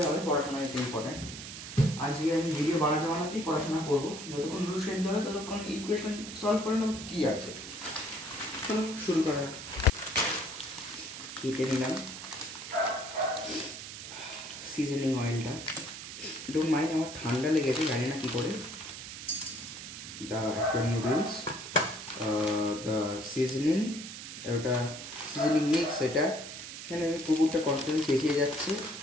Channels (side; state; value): right; noise; hiss, 10 dB below the sound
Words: হবে, পড়াশোনা ইজ ইম্পর্ট্যান্ট। আজকে আমি ভিডিও বানাতেই পড়াশোনা করবো। যতক্ষণ রুল সেদ্ধ হবে ততক্ষণ ইকুয়েশন সলভ করে নেবো কী আছে। চলো শুরু করা যাক। কেটে নিলাম সিজনিং অয়েলটা। ডোন্ট মাইন্ড, আমার ঠান্ডা লেগেছে, জানি না কী করে। The actual noodles, the seasoning, ওটা সিজনিং মিক্স। এটা এখানে কুকুরটা কনস্ট্যান্ট চেঁচিয়ে যাচ্ছে,